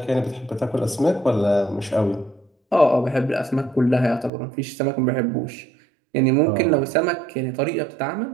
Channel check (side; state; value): left; drops out; at 4.3 s